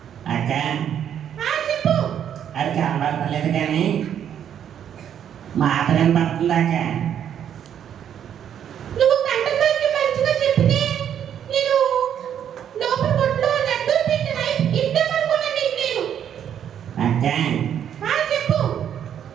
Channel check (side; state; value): left; quieter; 9.3 dB